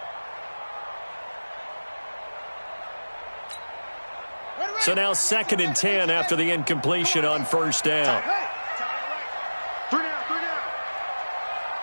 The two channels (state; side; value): inverted; both; correlation -1.00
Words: So now 2nd and 10 after the incompletion on 1st down.